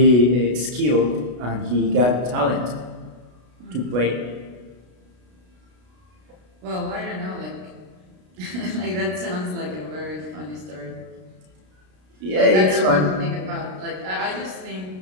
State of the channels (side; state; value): left; late; 33 ms